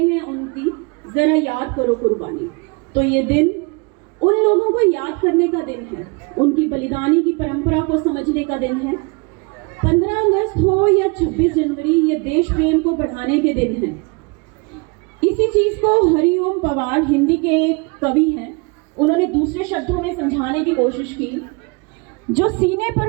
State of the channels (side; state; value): left; quieter; 29.8 dB